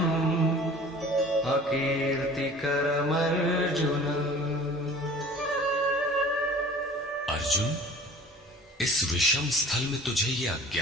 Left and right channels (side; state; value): both; normal; correlation 0.45